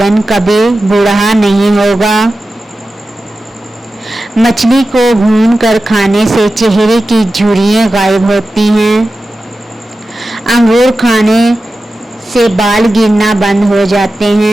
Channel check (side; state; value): both; normal; correlation 0.93